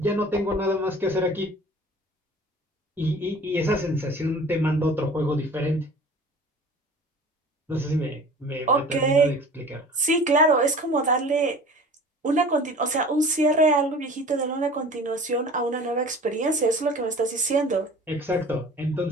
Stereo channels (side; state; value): both; normal; correlation 0.42